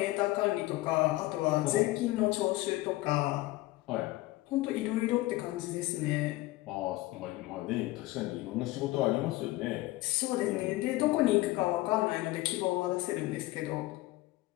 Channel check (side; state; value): right; quieter; 18.7 dB